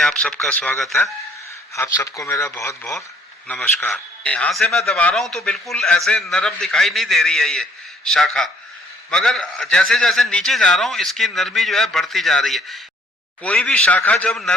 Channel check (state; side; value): normal; both; correlation 0.61